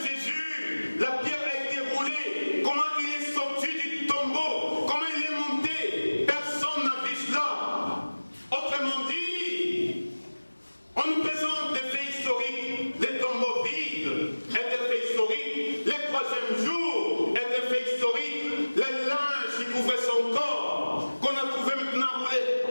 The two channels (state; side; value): inverted; both; correlation -1.00